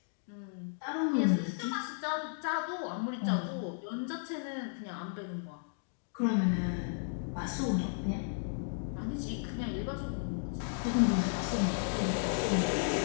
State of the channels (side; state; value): right; silent; digital silence